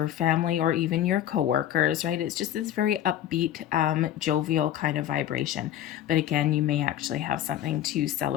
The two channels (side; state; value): right; quieter; 11.6 dB